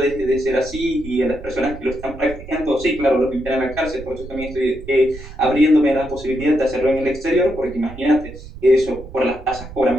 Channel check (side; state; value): right; noise; rumble, 14 dB below the sound